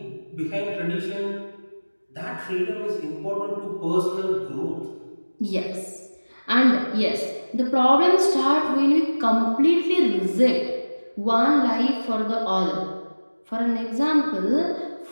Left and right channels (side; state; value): both; inverted; correlation -1.00